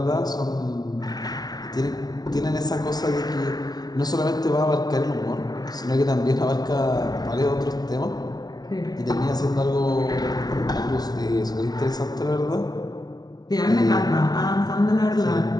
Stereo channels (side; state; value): right; late; 0.19 ms